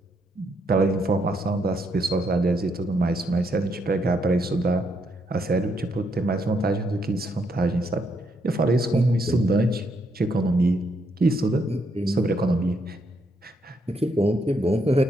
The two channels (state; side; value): normal; both; correlation 0.76